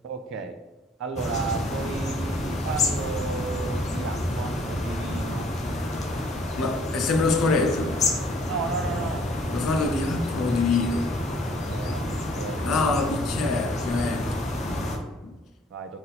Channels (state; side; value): normal; both; correlation 0.59